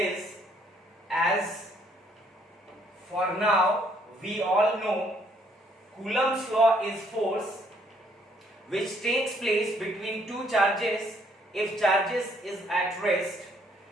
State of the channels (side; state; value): both; normal; correlation 0.66